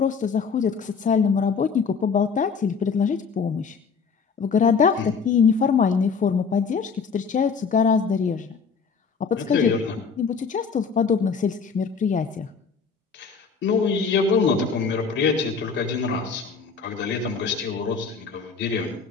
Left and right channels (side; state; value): right; quieter; 5.6 dB